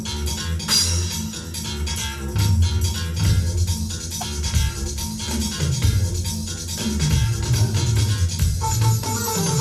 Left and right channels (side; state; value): both; identical; correlation 1.00